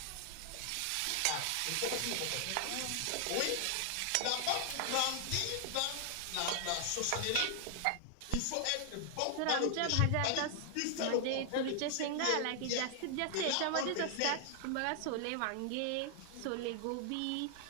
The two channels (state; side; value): different; both; correlation 0.00